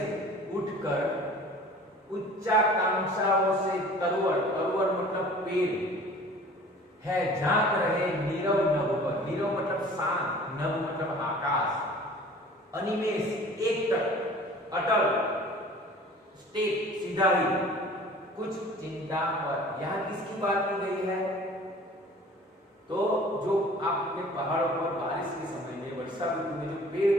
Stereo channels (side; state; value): both; normal; correlation 0.46